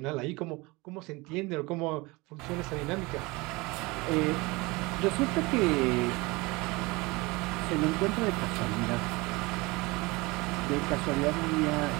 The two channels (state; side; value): quieter; left; 23.8 dB